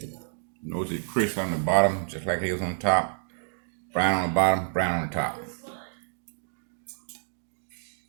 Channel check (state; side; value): silent; left; digital silence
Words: Notice it's crisp on the bottom, just like it was on top. Brown on the bottom, brown on the top.